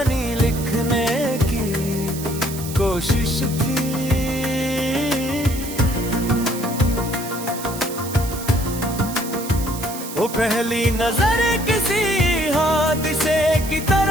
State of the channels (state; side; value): noise; right; hiss, 11 dB below the sound